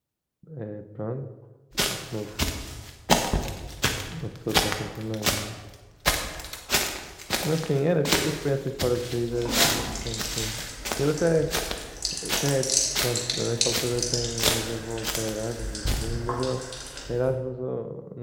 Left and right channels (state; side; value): identical; both; correlation 1.00